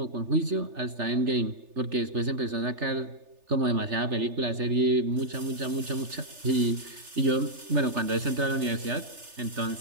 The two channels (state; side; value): late; left; 3.3 ms